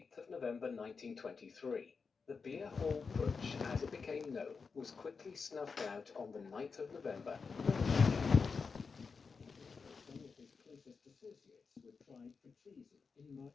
of November 1923. The beer hall putsch, as it became known, was quickly snuffed out on the 9th of November. Associates were tried for treason in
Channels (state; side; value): quieter; right; 5.1 dB